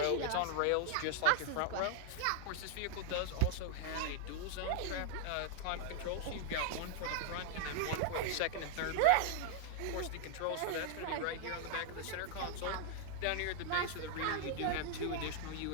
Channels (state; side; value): different; both; correlation -0.01